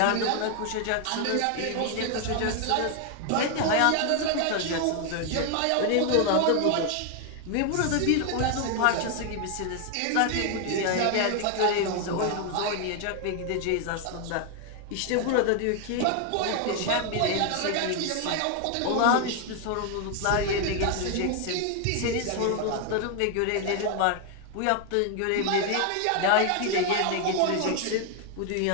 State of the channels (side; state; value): both; different; correlation 0.01